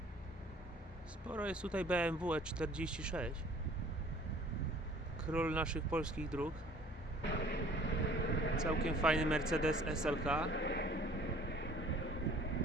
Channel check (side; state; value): both; normal; correlation 0.52